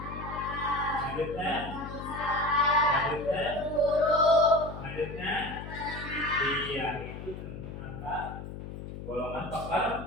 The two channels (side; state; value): left; noise; hum, 10 dB below the sound